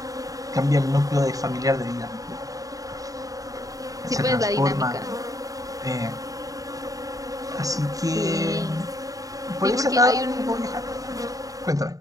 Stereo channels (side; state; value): left; late; 0.17 ms